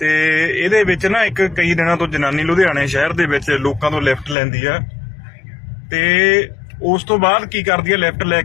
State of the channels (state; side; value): drops out; right; at 4.4 s